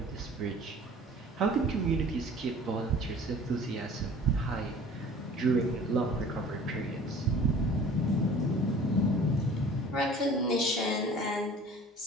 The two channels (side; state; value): both; normal; correlation 0.46